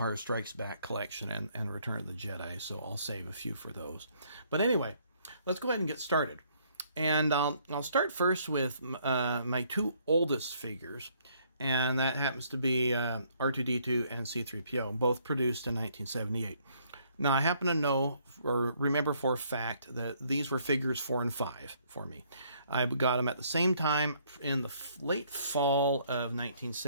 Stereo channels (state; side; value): inverted; both; correlation -0.66